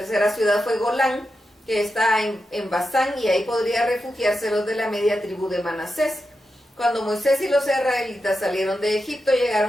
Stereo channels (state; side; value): normal; both; correlation 0.89